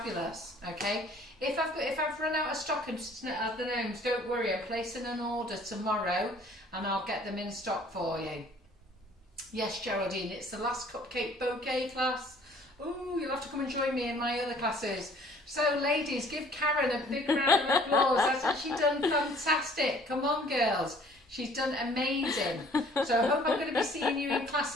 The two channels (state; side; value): normal; both; correlation 0.55